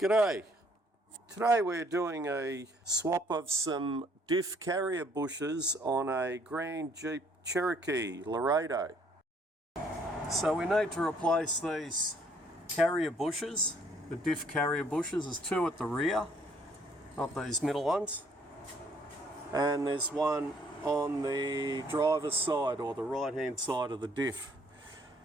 Today we're doing a swap of some Diff carrier bushes on a Grand Jeep Cherokee Laredo. So we need to replace these carrier bushes, the Diff carrier bushes. There's two at the rear, not these middle ones. And there's one on the driver's side or the right hand side of the Diff.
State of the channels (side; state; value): both; normal; correlation 0.63